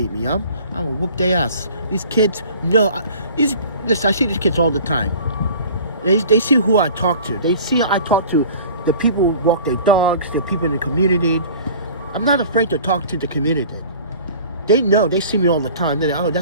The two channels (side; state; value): both; inverted; correlation -0.45